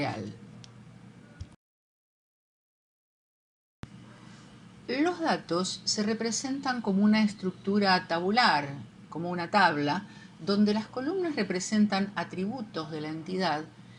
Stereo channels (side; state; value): both; identical; correlation 1.00